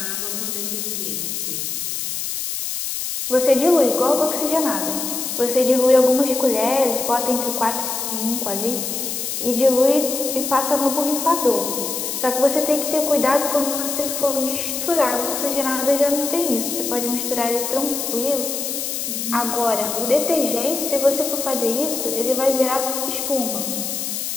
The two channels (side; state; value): left; noise; hiss, 3 dB below the sound